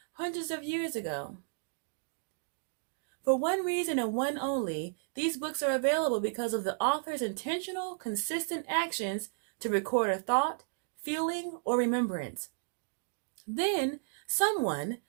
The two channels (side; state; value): left; silent; digital silence